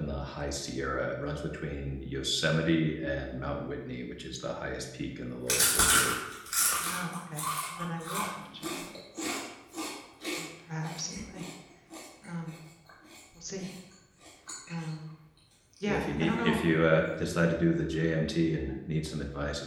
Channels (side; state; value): both; identical; correlation 1.00